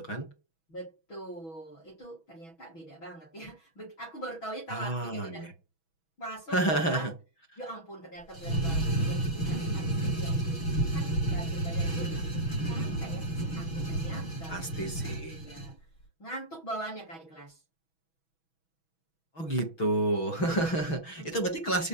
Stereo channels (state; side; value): late; right; 6.2 ms